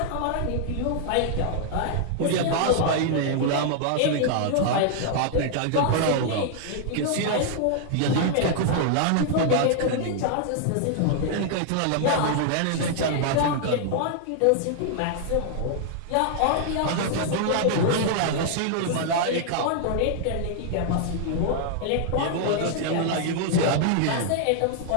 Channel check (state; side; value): different; both; correlation -0.01